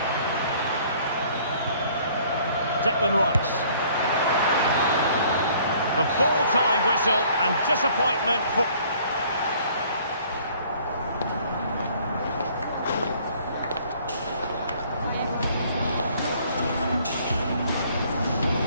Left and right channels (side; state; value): both; inverted; correlation -0.57